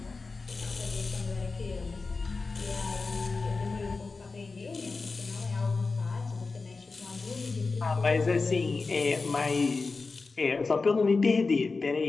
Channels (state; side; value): quieter; right; 4.0 dB